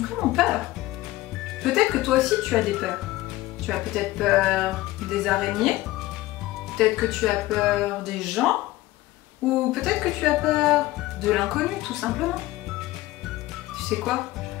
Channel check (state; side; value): quieter; right; 17.4 dB